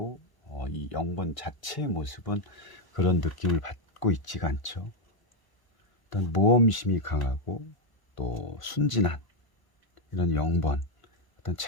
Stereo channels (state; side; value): late; right; 1.0 ms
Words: 이 영번 자체의 모습은 그런 느낌을 받고 있지가 않죠. 어떤 모험심이 강하고 또 순진한 이런 영번, 어떤